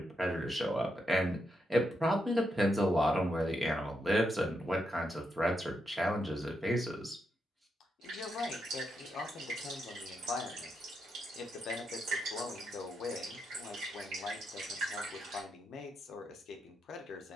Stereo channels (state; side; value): normal; both; correlation 0.83